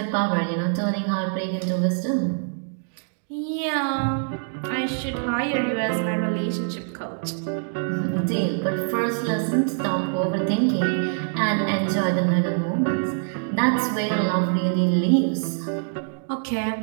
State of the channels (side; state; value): left; silent; digital silence